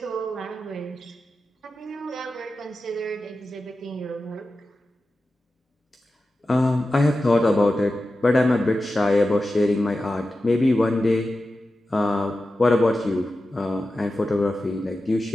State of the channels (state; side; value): normal; both; correlation 0.93